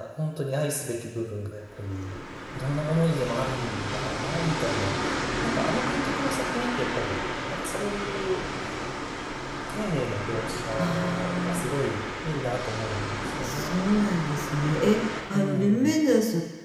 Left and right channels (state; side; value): identical; both; correlation 1.00